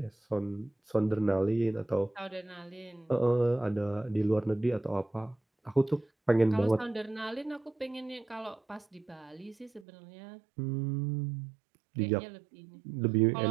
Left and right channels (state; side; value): drops out; left; at 9.9 s